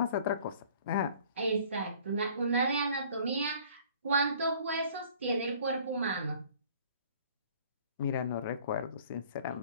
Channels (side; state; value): both; inverted; correlation -0.52